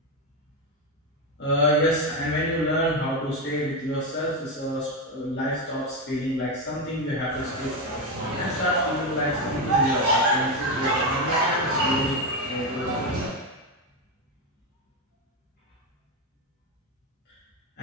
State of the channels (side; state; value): both; normal; correlation 0.11